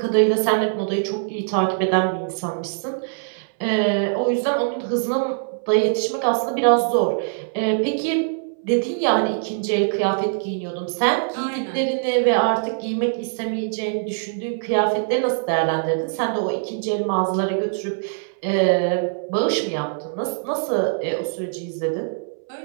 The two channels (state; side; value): silent; left; 64 dB below the other